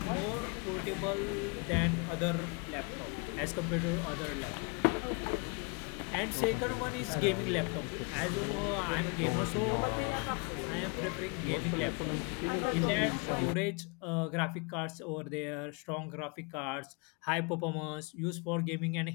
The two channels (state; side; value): quieter; right; 33.5 dB